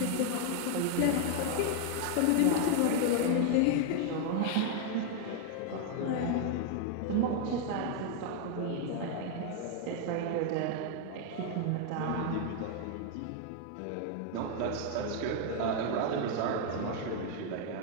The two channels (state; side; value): different; both; correlation 0.01